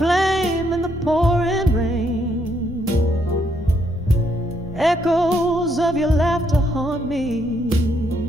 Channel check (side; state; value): both; normal; correlation 0.73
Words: in the pouring rain. Echoes of your laughter haunt me,